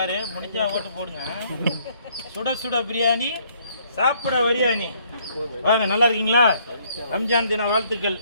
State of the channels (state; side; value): inverted; both; correlation -0.65